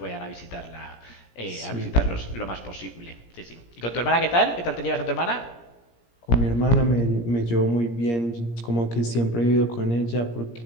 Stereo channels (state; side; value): late; right; 17 ms